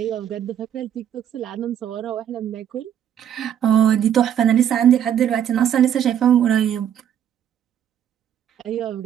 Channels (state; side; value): quieter; left; 9.7 dB